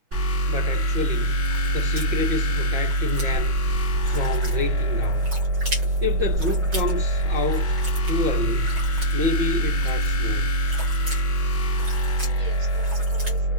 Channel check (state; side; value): late; left; 6.1 ms